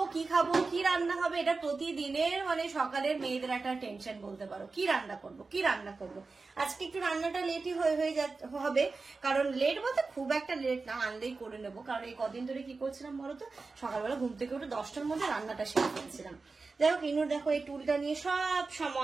কি রান্না হবে, এটা প্রতিদিনের সকালের মেয়েদের একটা টেনশন বলতে পারো। কি রান্না করবো। আজকে একটু রান্নাটা লেটই হয়ে হবে, কারণ লেট বলতে খুব একটা লেট না, আনলেই করে নেবো। কারণ এই কদিন ধরে কি করছিলাম বলতো, সকালবেলা ঘুম থেকে উঠে 10টার মধ্যে রান্নাটা সেরে ফেলছিলাম। যাই হোক, ইনুর দেখো এই টুলটা নিয়ে সব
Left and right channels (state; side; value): quieter; left; 4.0 dB